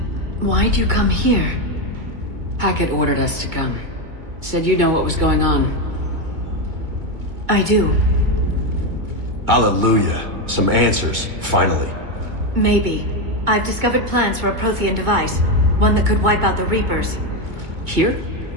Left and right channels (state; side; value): late; left; 2.1 ms